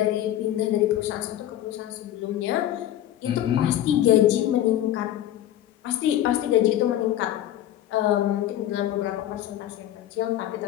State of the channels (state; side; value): quieter; right; 12.4 dB